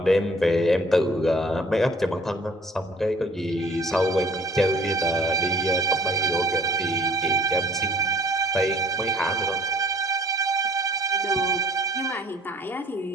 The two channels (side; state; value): both; normal; correlation 0.54